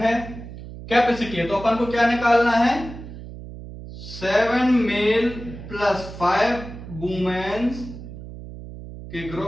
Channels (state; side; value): noise; right; hum, 12 dB below the sound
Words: कैपेसिटी है, तो अपन को क्या निकालना है? 7 मेल प्लस 5 वुमेन्स के